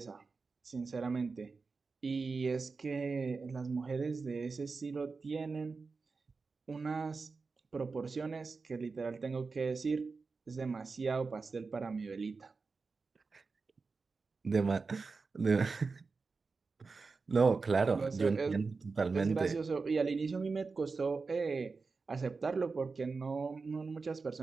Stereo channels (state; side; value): quieter; left; 4.4 dB